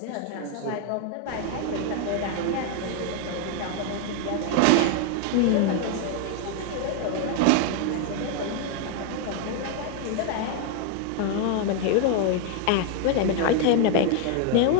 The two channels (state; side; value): different; both; correlation 0.00